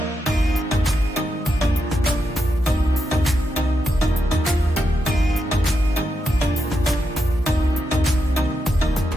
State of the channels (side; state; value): both; normal; correlation 0.84